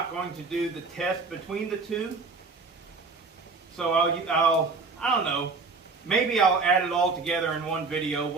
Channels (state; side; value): quieter; left; 4.2 dB